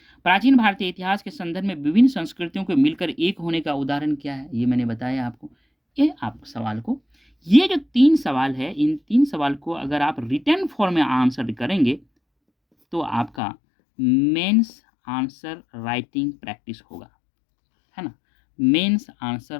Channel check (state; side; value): drops out; right; at 13.3 s